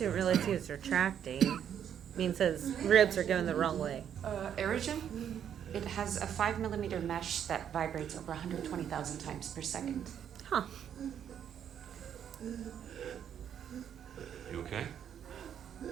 realize he was retracting. Means his ribs are going the wrong way. Aerogen? It has a 5mm mesh that vibrates over 120,000 times per second. Huh. You okay?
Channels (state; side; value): quieter; left; 9.1 dB